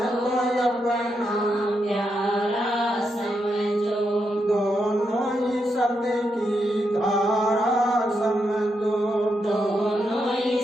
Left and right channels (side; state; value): both; normal; correlation 0.83